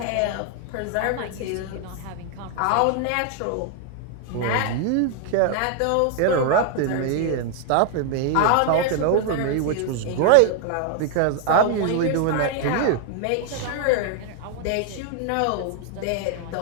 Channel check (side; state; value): both; different; correlation 0.00